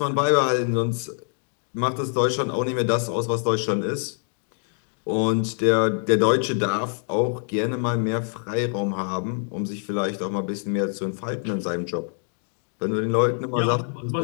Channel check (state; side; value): silent; right; 55 dB below the other